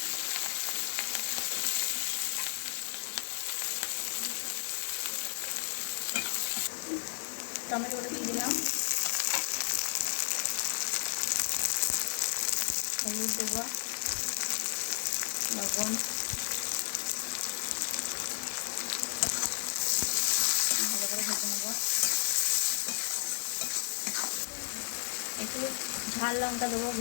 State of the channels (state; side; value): silent; right; digital silence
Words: টমেটো গুঁড়ো দিয়ে দিলাম, হলুদ দেবো, লবণ, ভালো করে ভেজে নেবো। একটু ঝাল লঙ্কা দেবো